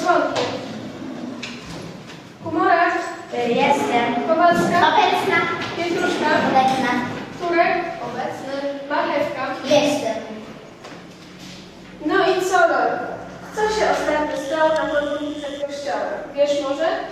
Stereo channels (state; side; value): identical; both; correlation 1.00